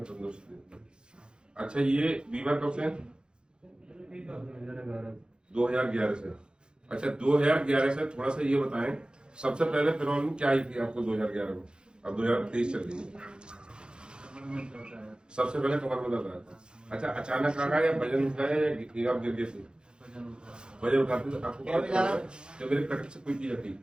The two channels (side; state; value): left; late; 0.049 ms